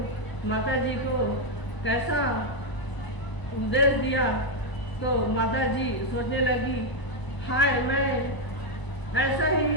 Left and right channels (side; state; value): right; late; 1.0 ms